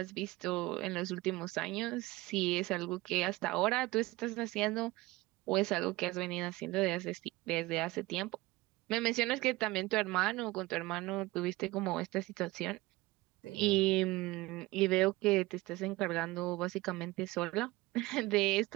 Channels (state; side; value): quieter; left; 20.3 dB